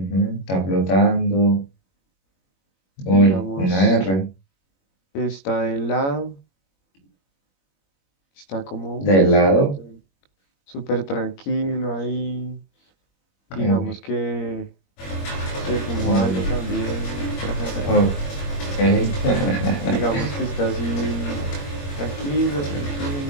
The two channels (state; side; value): late; right; 21 ms